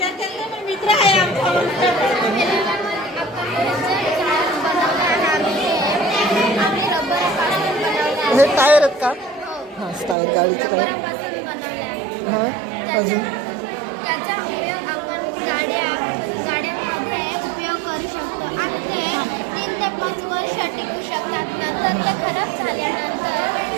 हे टायर आहेत का? हां टायर गाडीचे टायर. हां अजून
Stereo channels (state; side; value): drops out; left; at 10.2 s